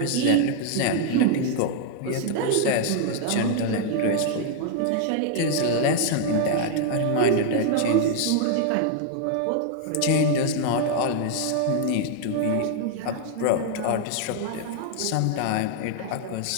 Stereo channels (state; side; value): different; both; correlation 0.00